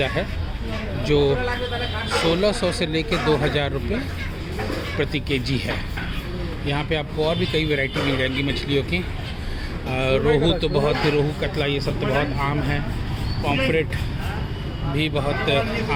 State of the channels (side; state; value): both; identical; correlation 1.00